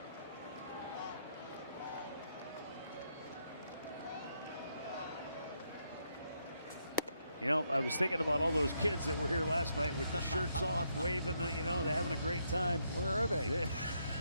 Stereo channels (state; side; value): inverted; both; correlation -0.77